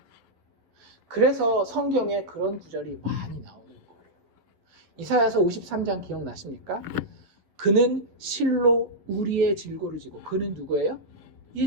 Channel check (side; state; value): left; late; 11 ms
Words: 그래서 성경에 그런 구절이 많이 나오는 거예요. 이사야서 53장 기억나십니까? 그는 실로 우리의 질고를 지고, 그는 누구예요?